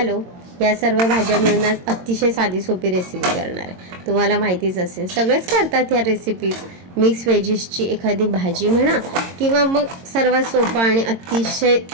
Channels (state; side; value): late; left; 22 ms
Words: या सर्व भाज्या मिळून आज अतिशय साधी सोपी रेसिपी करणार आहे। तुम्हाला माहितीच असेल, सगळेच करतात ह्या रेसिपीज। मिक्स व्हेजीसची एखादी भाजी म्हणा किंवा मग सर्वात सोपा आणि अतिशय